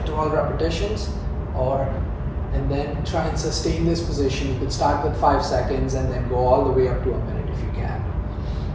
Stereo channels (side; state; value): both; identical; correlation 1.00